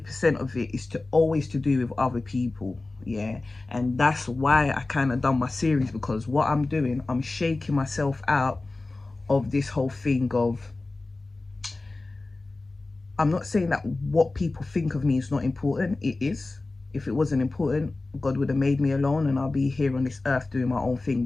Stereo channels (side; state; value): right; quieter; 3.2 dB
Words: of it is always to do with other people, yeah. And that's why I kind of done my series, because what I'm doing, I'm shaking myself out of this whole thing of, I'm not saying that what people think of me is not important. It is. If it wasn't important, God would have made me alone and I'll be here on this earth doing my own thing.